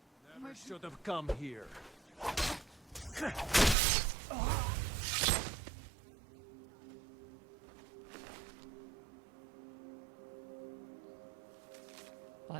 Never should have come here.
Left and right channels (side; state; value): left; drops out; at 3.8 s